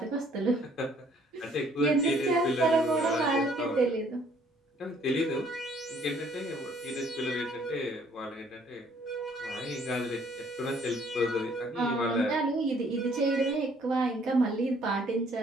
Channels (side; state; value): both; normal; correlation 0.61